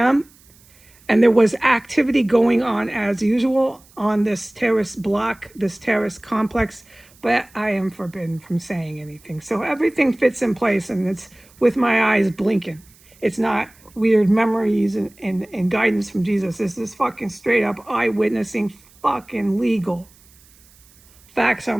and there was activity going on as usual on this terrorist block, this terrorist complex, but I am forbidden from saying anything. So everything fits in place, and it's with my eyes blinking. It's not weird memories and guidance from Jesus. This is fucking straight up eyewitnessing, fucking legal. Facts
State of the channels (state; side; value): noise; right; hiss, 28 dB below the sound